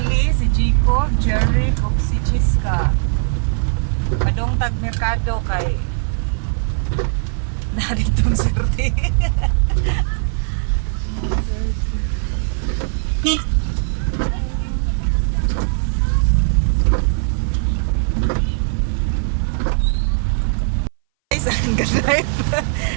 si Jico, Jerry, ug si Jiska. Padong tag merkado kay naritong sirti. Guys, ang drive.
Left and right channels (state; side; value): silent; left; 61 dB below the other